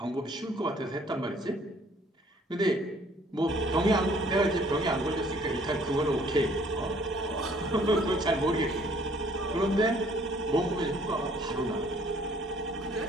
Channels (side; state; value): both; normal; correlation 0.59